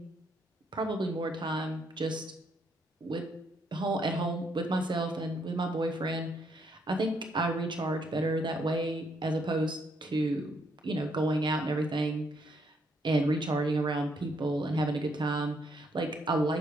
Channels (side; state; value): both; normal; correlation 0.73